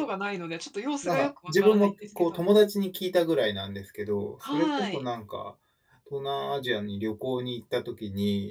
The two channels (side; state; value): both; identical; correlation 1.00